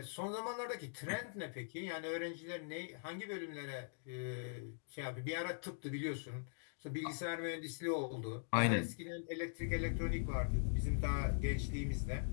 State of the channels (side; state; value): right; silent; digital silence